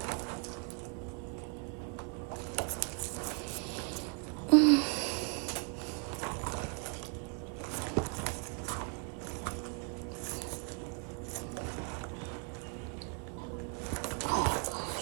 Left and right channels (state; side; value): quieter; left; 34.3 dB